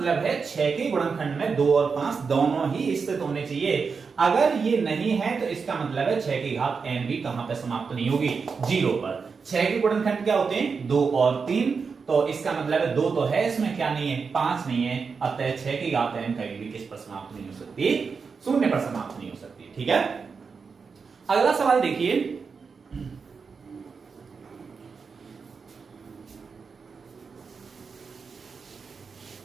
है 6 के गुणनखंड में 2 और 5 दोनों ही स्थित होने चाहिए। अगर ये नहीं है तो इसका मतलब है 6 की घात n भी कहां पर समाप्त नहीं होगी, 0 पर। 6 के गुणनखंड क्या होते हैं, 2 और 3। तो इसका मतलब है 2 तो है, इसमें क्या नहीं है, 5 नहीं है। अतः 6 की घात n कभी भी किस पर समाप्त नहीं हो सकती, 0 पर समाप्त नहीं हो सकती। ठीक है, अगला सवाल देखिए।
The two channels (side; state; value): left; quieter; 5.3 dB